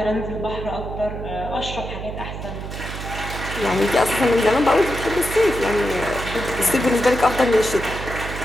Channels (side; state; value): right; noise; hum, 8 dB below the sound